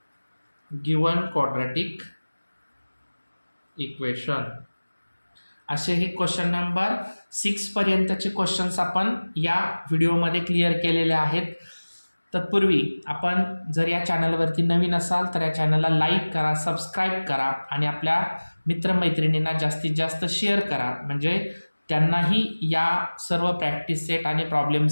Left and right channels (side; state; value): both; inverted; correlation -1.00